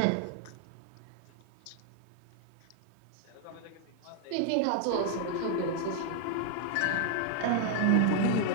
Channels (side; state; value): both; different; correlation 0.00